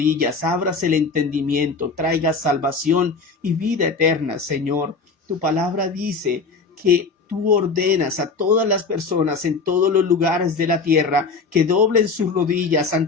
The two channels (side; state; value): right; quieter; 4.4 dB